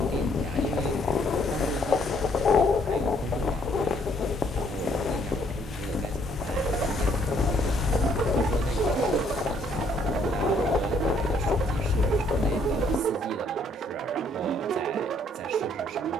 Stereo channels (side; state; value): both; normal; correlation 0.66